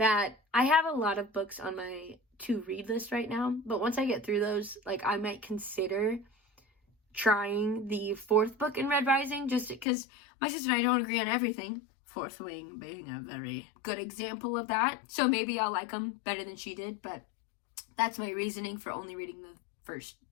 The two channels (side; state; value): right; drops out; at 9.9 s